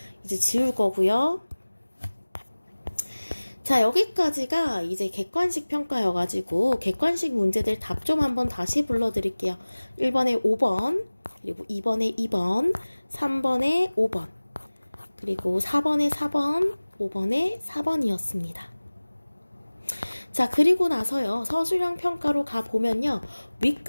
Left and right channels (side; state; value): both; inverted; correlation -1.00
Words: 이제 지울 거고요. 자, 여기까지가 이제 객관식 평가여가지고 객관식 문제들 답 좀 한번 다시 불러드릴게요. 1번에 5번, 그리고 2번에 2번, 3번에 5번, 그리고 4번에 4번, 5번에 4번이었습니다. 자, 그리고 나서요, 서술형 평가로 가보면요,